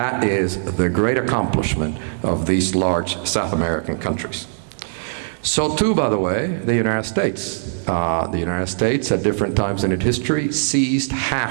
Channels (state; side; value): silent; left; 58 dB below the other